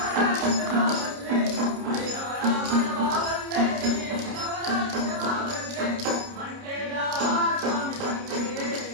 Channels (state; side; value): late; left; 29 ms